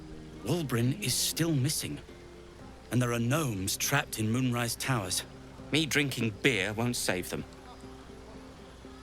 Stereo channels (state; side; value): identical; both; correlation 1.00